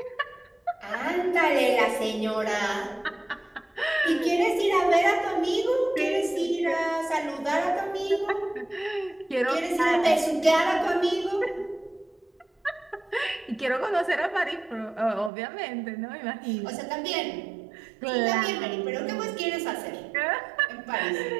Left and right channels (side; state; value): left; drops out; at 15.3 s